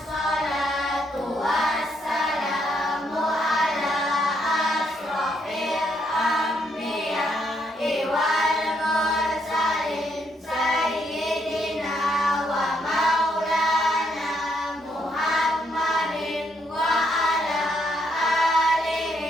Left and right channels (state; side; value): normal; both; correlation 0.74